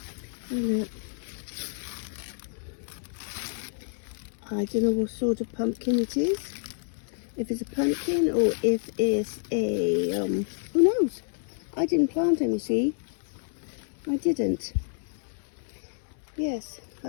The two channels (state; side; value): silent; right; 59 dB below the other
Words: And look. I don't know what sort of pumpkin it is. If it's a pumpkin or if it's a, who knows? I didn't plant them, you see. I didn't. Yes,